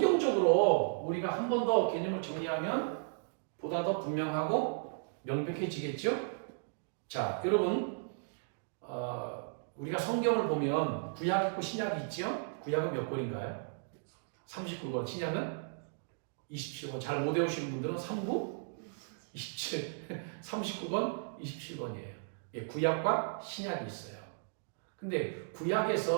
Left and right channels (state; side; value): silent; left; digital silence